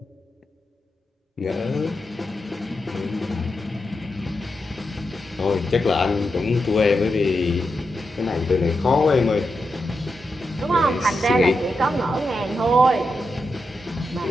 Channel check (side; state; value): both; normal; correlation 0.87